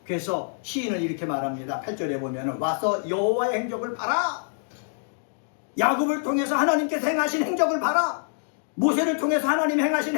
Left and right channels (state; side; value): silent; right; digital silence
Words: 그래서 시인은 이렇게 말합니다. 8절에 보면 와서 여호와의 행적을 봐라. 야곱을 통해서 하나님께서 행하신 행적을 봐라. 모세를 통해서 하나님 행하신